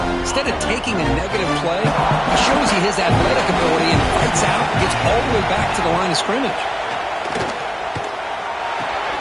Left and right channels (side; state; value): both; identical; correlation 1.00